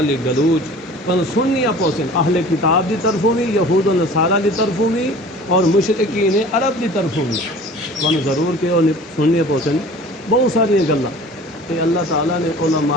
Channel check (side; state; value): both; normal; correlation 0.44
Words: گلوچ تمہیں سننیاں پوسن، اہل کتاب دی طرفوں بھی، یہود و نصارہ دی طرفوں بھی، اور مشرکین عرب دی طرفوں بھی تمہیں ضرور کہ سننیاں پوسن بہت ساری گلاں۔ تے اللہ تعالیٰ نے